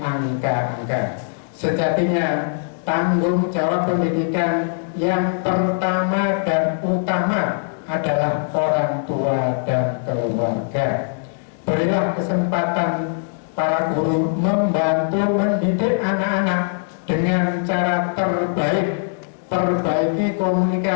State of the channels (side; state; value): right; silent; digital silence